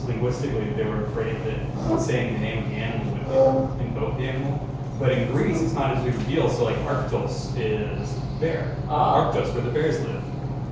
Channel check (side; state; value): both; identical; correlation 1.00